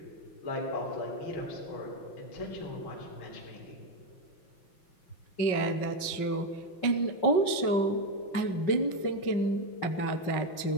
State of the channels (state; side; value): late; right; 5.4 ms